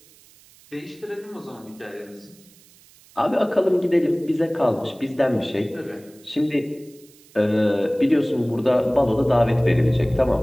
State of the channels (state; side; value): noise; right; hiss, 27 dB below the sound